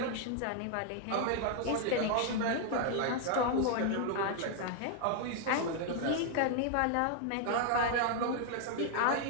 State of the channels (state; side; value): different; both; correlation 0.00